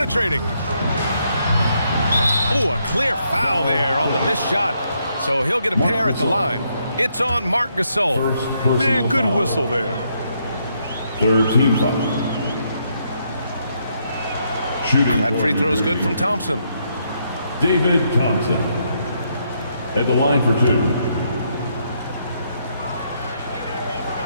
Oh, a clear foul there on the missed shot. So he'll get a pair at the line. It's on Marc Gasol. Man, good whistle there. Third team foul. Shooting that free throw is good from Thompson. David Thompson at the line for 2.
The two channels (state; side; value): inverted; both; correlation -0.76